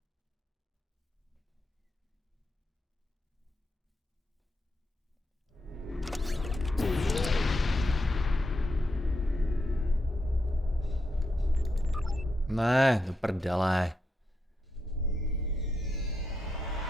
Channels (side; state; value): both; normal; correlation 0.83